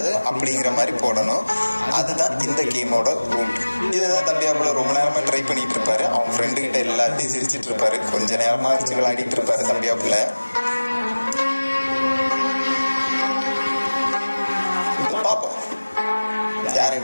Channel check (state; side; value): inverted; both; correlation -1.00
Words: அப்படிங்கிற மாதிரி போடணும். அதுதான் இந்த கேமோட ரூல். இதுதான் தம்பியாப்புல ரொம்ப நேரமாக ட்ரை பண்ணிட்டு இருப்பாரு. அவன் ஃப்ரெண்டுக்கிட்ட எல்லாத்தையும் சிரிச்சிட்டு இருப்பாரு. கொஞ்ச நேரமாக அரிச்சு விளையாடிட்டு இருப்பாரு தம்பியாப்புல. பார்ப்போம் யார்